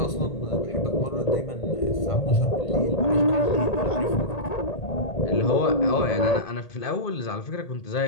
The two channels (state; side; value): late; right; 1.8 ms